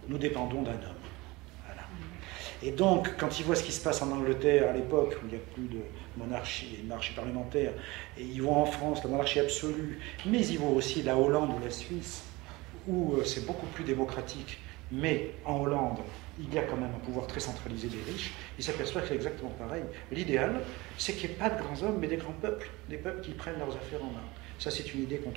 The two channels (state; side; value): quieter; left; 22.2 dB